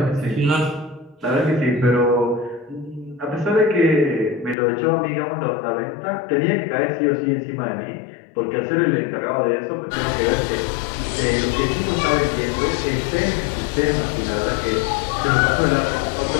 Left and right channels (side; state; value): right; drops out; at 4.5 s